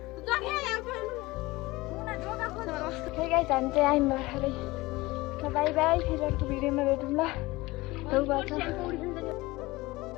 हे गाइस हामी चाहिँ आयौँ भर्खरै बाई बाई फेरि अर्को भिडियोमा भेटौँ ल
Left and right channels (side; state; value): right; quieter; 20.9 dB